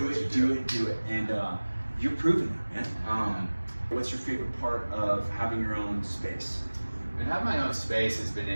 Do it. And you're proving that, man. What's your favorite part of having your own space? And having my own space has been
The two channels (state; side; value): inverted; both; correlation -1.00